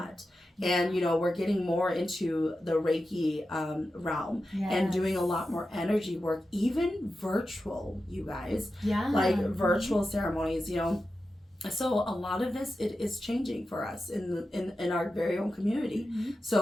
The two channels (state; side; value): normal; both; correlation 0.91